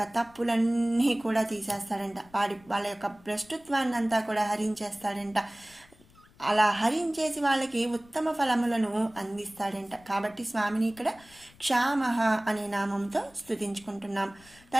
తప్పులన్నీ కూడా తీసేస్తాడంట. వాళ్ళ యొక్క భ్రష్టుత్వాన్ని అంతా కూడా హరించేస్తాడంట. అలా హరించేసి వాళ్ళకి ఉత్తమ ఫలములను అందిస్తాడంట. కాబట్టి స్వామిని ఇక్కడ క్షామః అనే నామంతో స్తుతించుకుంటున్నాం.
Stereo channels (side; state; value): left; noise; rumble, 27 dB below the sound